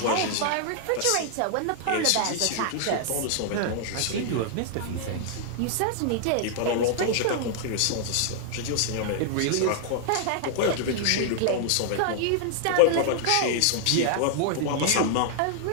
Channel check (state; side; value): different; both; correlation -0.01